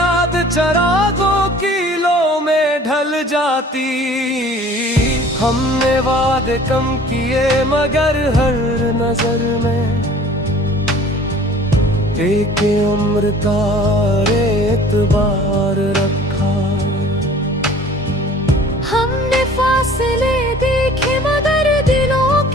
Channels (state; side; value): normal; both; correlation 0.49